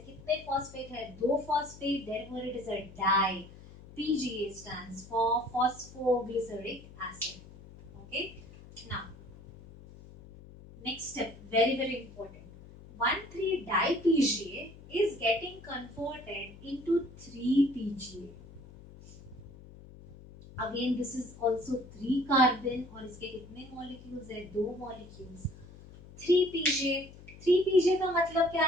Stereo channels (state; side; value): noise; left; hum, 18 dB below the sound